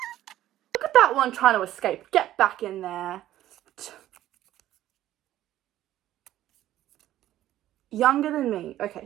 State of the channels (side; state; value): left; quieter; 13.4 dB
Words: look at that one trying to escape. Get back in there. Younger than me. Okay,